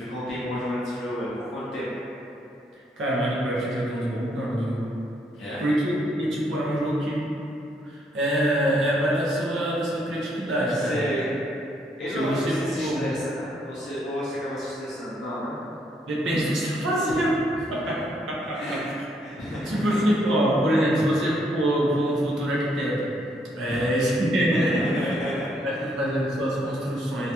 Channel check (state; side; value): normal; both; correlation 0.72